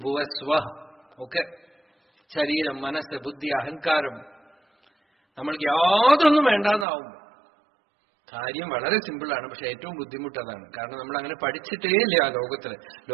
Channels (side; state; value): left; drops out; at 6.9 s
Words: ഒക്കെ. ശരീരം, മനസ്സ്, ബുദ്ധി, അഹങ്കാരം നമ്മൾക്ക് യാതൊന്നും വേണ്ടാന്നാവും. കാര്യം വളരെ സിമ്പിളാണ്, പക്ഷെ ഏറ്റവും ബുദ്ധിമുട്ടതാണ്. കാരണം നമ്മൾ അങ്ങനെ പഠിച്ചിട്ടേ ഇല്ല